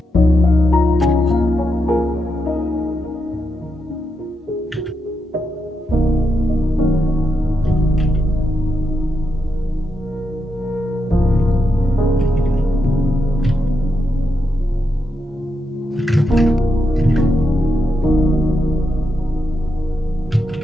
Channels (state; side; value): normal; both; correlation 0.84